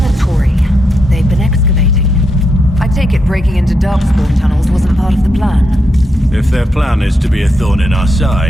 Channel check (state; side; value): normal; both; correlation 0.82